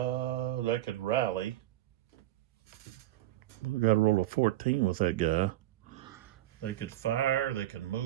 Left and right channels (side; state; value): left; quieter; 14.6 dB